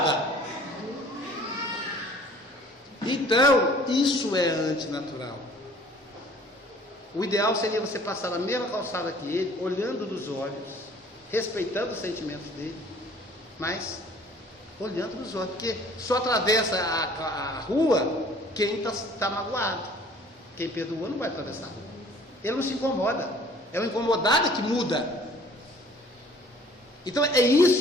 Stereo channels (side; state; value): both; normal; correlation 0.53